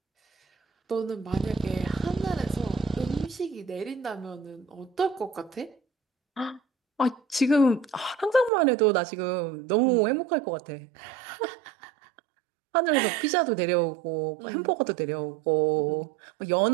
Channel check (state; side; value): drops out; left; at 8.5 s